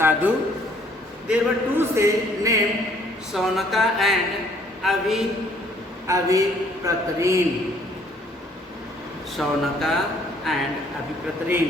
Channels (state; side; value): normal; both; correlation 0.62